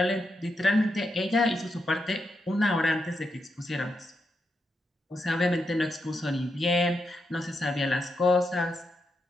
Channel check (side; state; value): both; normal; correlation 0.84